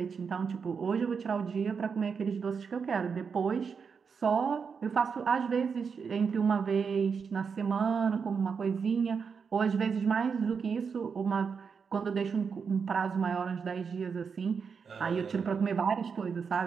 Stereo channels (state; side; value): quieter; left; 6.0 dB